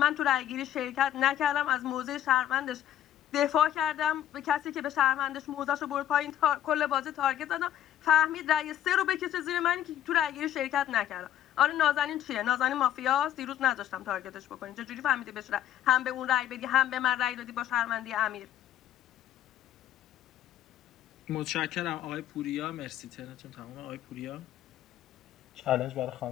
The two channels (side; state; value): right; quieter; 11.4 dB